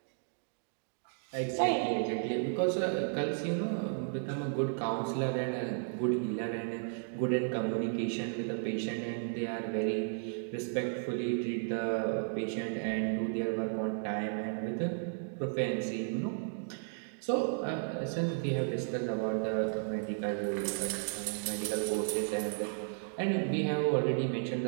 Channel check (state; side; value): silent; left; digital silence